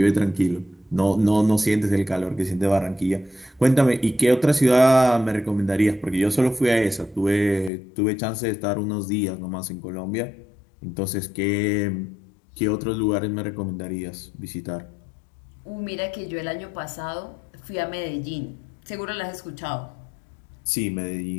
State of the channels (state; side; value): drops out; right; at 7.7 s